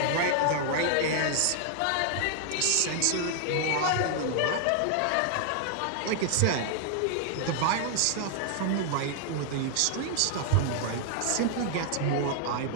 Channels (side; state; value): both; different; correlation 0.00